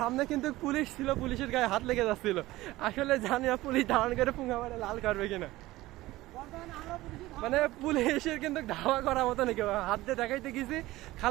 কিন্তু পুলিশ ছিল, পুলিশের গায়ে হাত লেগে যাচ্ছিল। আসলে জানি না পুলিশ ধারণ করে পুঙ্গা মারে লাল করবে কিনা, মানে পুলিশের কিন্তু ধাওয়া করার মতো নাকি, হাত দিয়ে দেখাইতে গেছি।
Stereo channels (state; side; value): quieter; left; 17.8 dB